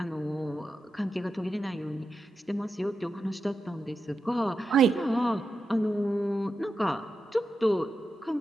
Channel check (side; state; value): both; normal; correlation 0.89